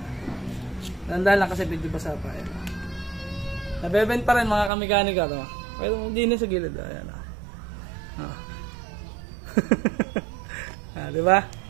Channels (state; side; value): drops out; left; at 4.7 s